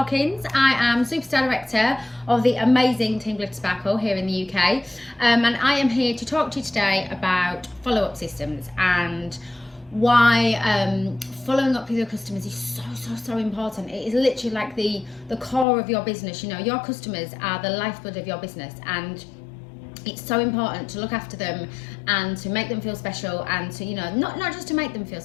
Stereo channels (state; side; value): drops out; right; at 15.7 s